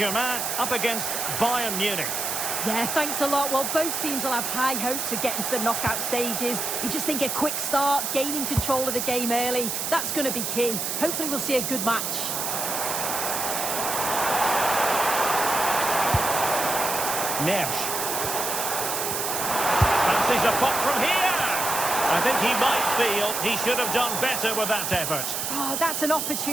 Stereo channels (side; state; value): right; noise; hiss, 2 dB below the sound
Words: up against Bayern Munich. Yeah, thanks a lot. Well, both teams will have high hopes of getting to the knockout stages. You just think a quick start, gaining control of the game early, that's going to be key. Hopefully we'll see a good match. Neves. Fancies a pop from here. I think he might feel he should have done better with that effort. Oh, that's an